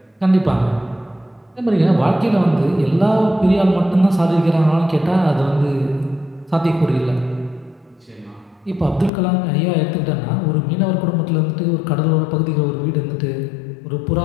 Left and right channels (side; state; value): right; drops out; at 9.1 s